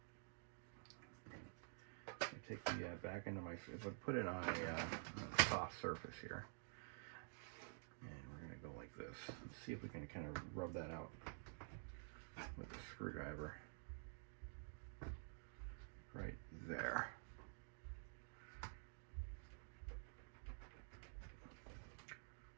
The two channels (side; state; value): left; silent; digital silence